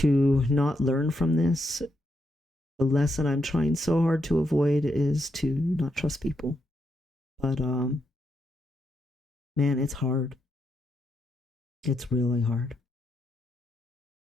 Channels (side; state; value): both; normal; correlation 0.81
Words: not learn from this, the lesson I'm trying so hard to avoid is to not trust people. But man, it's hard. It's really hard.